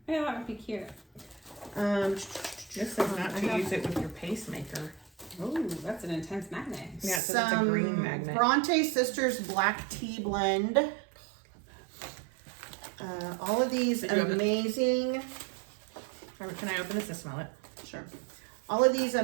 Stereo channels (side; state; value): left; drops out; at 7.2 s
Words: Yeah, that would be cute. This is not to use it with your pacemaker. Ooh, that's an intense magnet. Yeah, it says it's a green magnet. Bronte Sisters Black Tea Blend. All of these Did you have it? amazing Can I open this to smell it? Sure. All of these